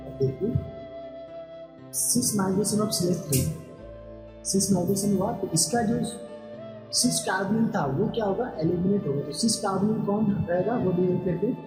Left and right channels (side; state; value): both; identical; correlation 1.00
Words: देखिए cis migration of CH3, cis migration हुआ तो इसका जो सिस कार्बोनिल था वो क्या होगा, एलिमिनेट होगा। तो सिस कार्बोनिल कौन रहेगा वो भी करके